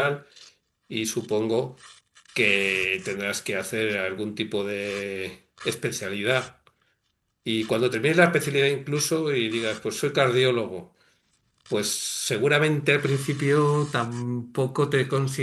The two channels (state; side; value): identical; both; correlation 1.00